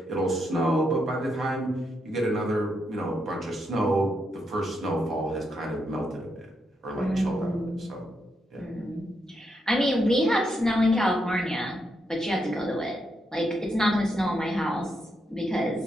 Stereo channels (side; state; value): both; normal; correlation 0.81